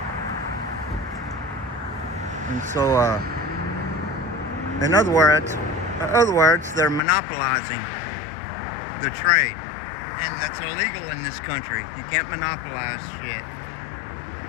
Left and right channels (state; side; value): drops out; right; at 7.0 s